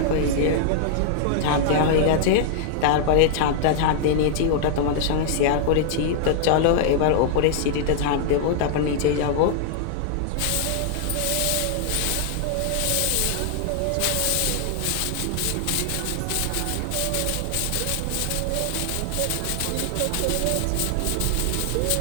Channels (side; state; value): both; different; correlation -0.01